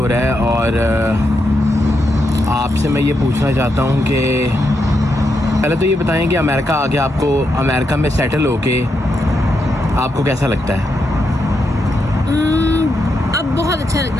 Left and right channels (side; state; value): both; normal; correlation 0.83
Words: रहा है और आपसे मैं ये पूछना चाहता हूँ कि पहले तो ये बताएं कि अमेरिका आके आपको अमेरिका में सेटल होके आपको कैसा लगता है? अब बहुत अच्छा